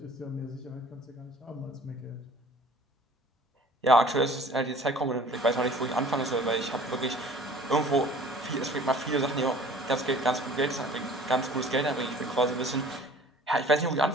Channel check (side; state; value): both; normal; correlation 0.49